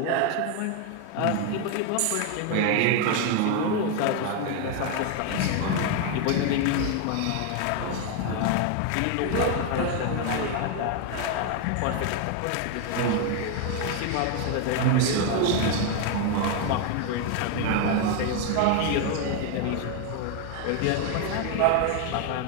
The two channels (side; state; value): both; different; correlation 0.01